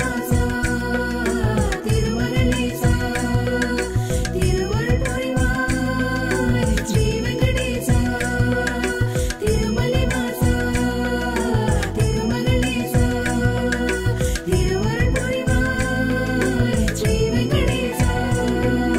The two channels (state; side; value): identical; both; correlation 1.00